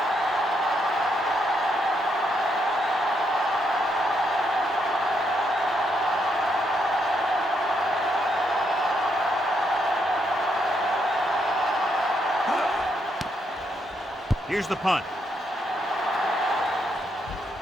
Here's the punt.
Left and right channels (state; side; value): normal; both; correlation 0.77